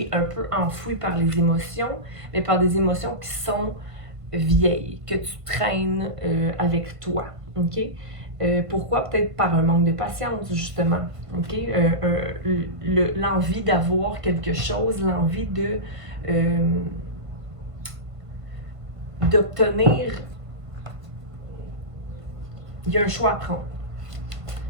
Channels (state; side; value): late; left; 1.5 ms